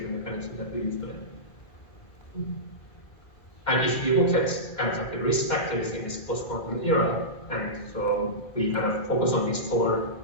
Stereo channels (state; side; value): late; right; 1.9 ms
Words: mechanisms that we use today. And if you look at kind of like the risk factors in this post-quantum era, and so we kind of focus on these four